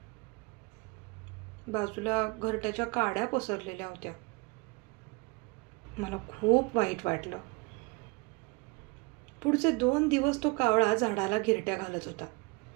बाजूला घरट्याच्या काड्या पसरलेल्या होत्या. मला खूप वाईट वाटलं. पुढचे 2 दिवस तो कावळा झाडाला घिरट्या घालत होता.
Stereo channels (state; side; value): quieter; left; 27.7 dB